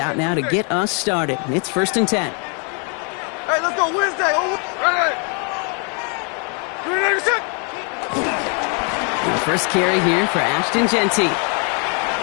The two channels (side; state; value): right; quieter; 37.8 dB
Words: now to get us started. It's 1st and 10. Hey, let's go Wednesday. The first carry here for Ashton Genty.